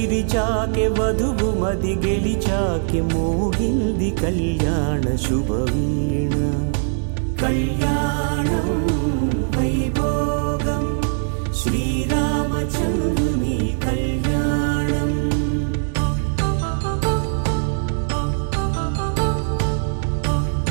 వధువు మది గెలిచాకె మోగింది కళ్యాణ శుభవీణ కళ్యాణం వైభోగం శ్రీరామచంద్రుని కళ్యాణం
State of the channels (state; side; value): silent; left; digital silence